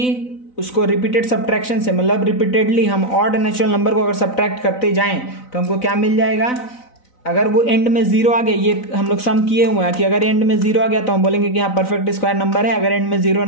उसको रिपीटेड सब्ट्रैक्शन से, मतलब रिपीटेडली हम ऑड नेचुरल नंबर को अगर सब्ट्रैक्ट करते जाएं तो हमको क्या मिल जाएगा, अगर वो एंड में जीरो आ गया, ये हम लोग सम किए हुए हैं कि अगर एंड में जीरो आ गया तो हम बोलेंगे कि हाँ परफेक्ट स्क्वायर नंबर है, अगर एंड में जीरो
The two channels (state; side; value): late; right; 4.0 ms